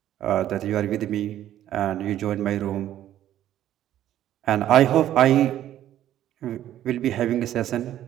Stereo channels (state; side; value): quieter; left; 12.1 dB